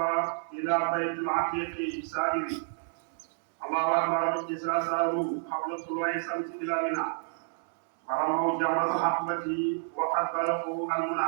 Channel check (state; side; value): silent; left; digital silence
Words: إلى بيت العتيق سائر. الله أكبر إذا ساروا قبل طلوع الشمس إلى منى ورموا جمرة الحقبة وقد بلغوا